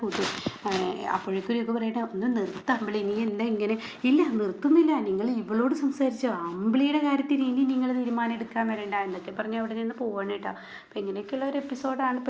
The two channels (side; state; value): both; identical; correlation 1.00